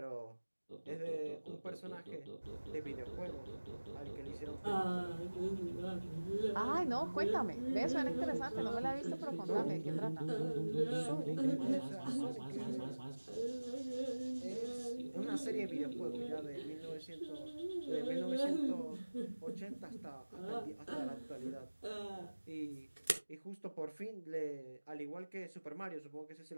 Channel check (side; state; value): both; inverted; correlation -1.00